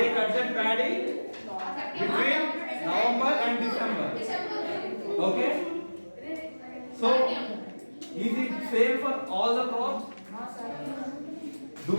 cut that paddy between November and December. Okay? So, is it same for all the crops? Do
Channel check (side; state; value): both; inverted; correlation -1.00